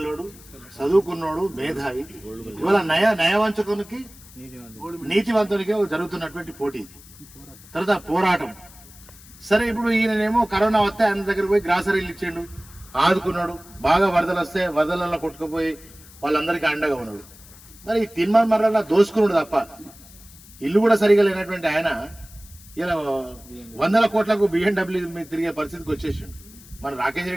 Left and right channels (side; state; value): left; noise; hiss, 21 dB below the sound